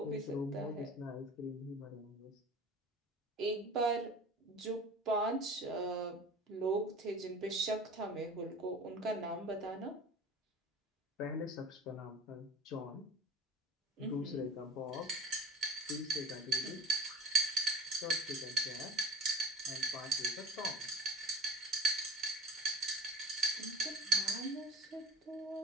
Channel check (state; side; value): normal; both; correlation 0.38